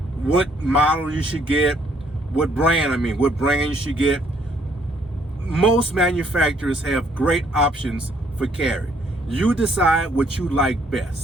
what model you should get, what brand you should get. Most manufacturers have great options for carry. You decide what you like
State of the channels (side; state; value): both; normal; correlation 0.66